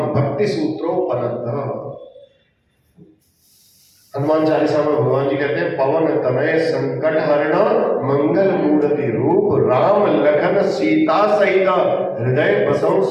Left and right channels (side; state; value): both; identical; correlation 1.00